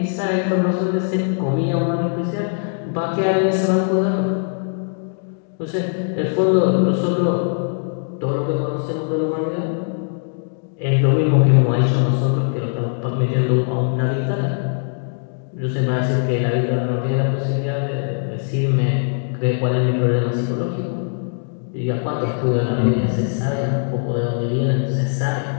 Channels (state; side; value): silent; right; digital silence